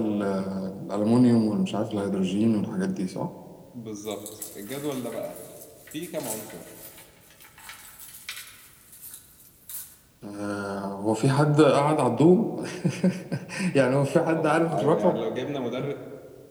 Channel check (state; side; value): identical; both; correlation 1.00